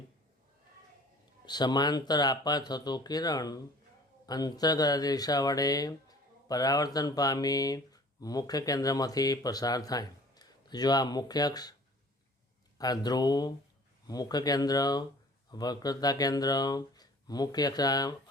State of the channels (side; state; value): both; normal; correlation 0.48